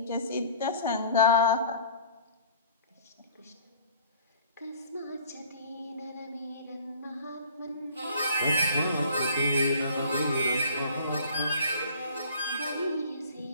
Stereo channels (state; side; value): inverted; both; correlation -0.50